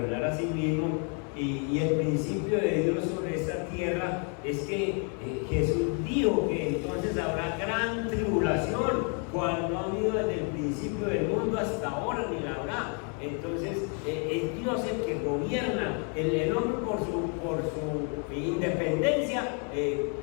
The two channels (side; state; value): right; quieter; 39.4 dB